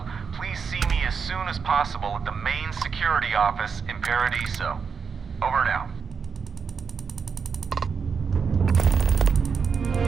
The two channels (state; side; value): quieter; left; 5.9 dB